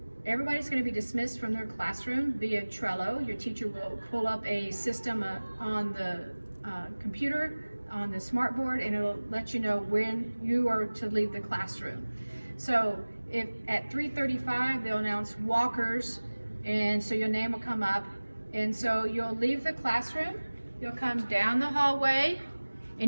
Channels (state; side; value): inverted; both; correlation -1.00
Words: Everybody's going to be dismissed from their classroom via Trello. Your teacher will pull up a system on the computer, on the smartboard, and it'll let you know when you are to leave the classroom. So if at 3:35 they'll announce walkers, and so your name will come up, and so you'll leave the classroom, you'll come down the hallway,